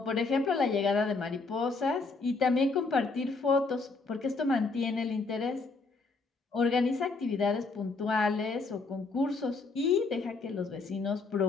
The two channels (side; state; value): right; quieter; 3.9 dB